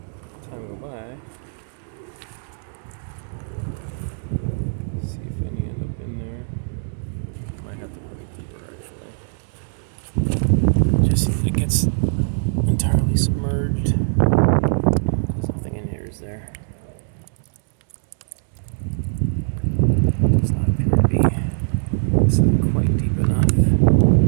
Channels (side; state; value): left; silent; digital silence